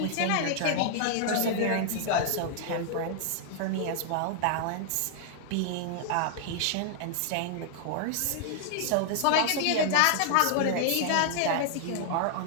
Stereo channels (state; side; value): different; both; correlation -0.01